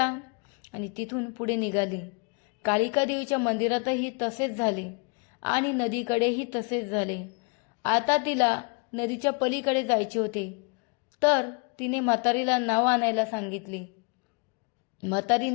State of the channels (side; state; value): right; quieter; 34.0 dB